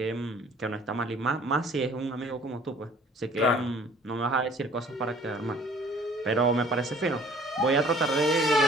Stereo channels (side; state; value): both; normal; correlation 0.54